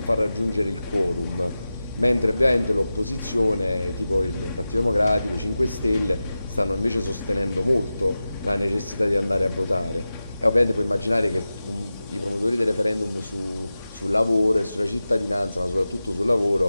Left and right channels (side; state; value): both; inverted; correlation -0.94